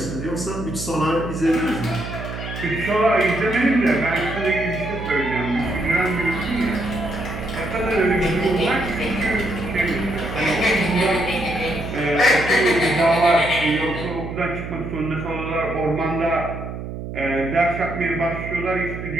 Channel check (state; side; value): noise; right; hum, 8 dB below the sound